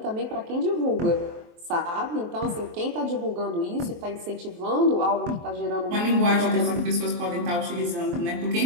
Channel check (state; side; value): late; left; 23 ms